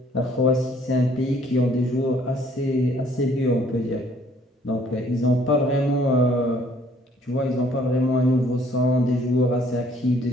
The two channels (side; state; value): both; normal; correlation 0.60